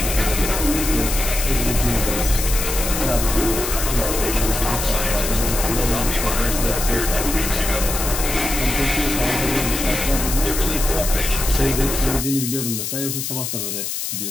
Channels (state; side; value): noise; left; hiss, 4 dB below the sound